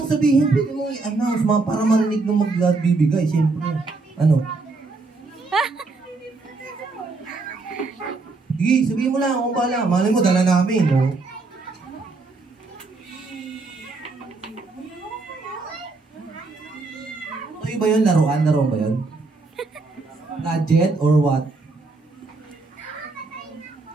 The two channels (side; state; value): left; quieter; 3.7 dB